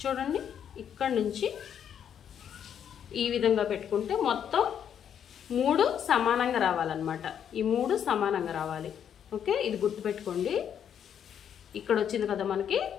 చూడండి, ఇక్కడ నుంచి ఈ విధంగా పెట్టుకుంటే మొత్తం 3 సమానంగా రావాలన్నమాట. ఈ 3 సమానంగా రావాలి. ఓకే, ఇది గుర్తుపెట్టుకోండి. ఇక్కడ వచ్చింది కదా మనకి,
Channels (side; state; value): right; quieter; 8.8 dB